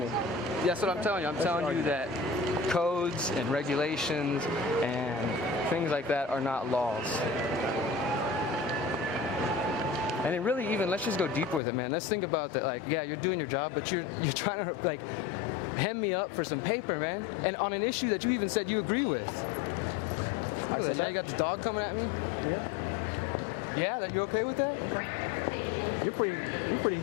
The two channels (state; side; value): drops out; right; at 11.6 s